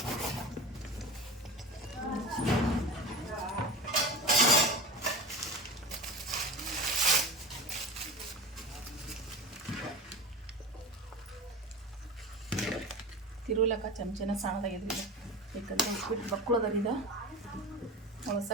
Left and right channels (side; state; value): both; normal; correlation 0.31